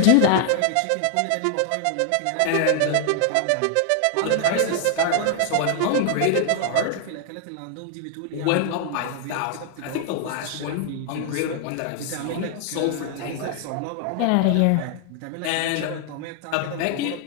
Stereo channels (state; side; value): different; both; correlation 0.00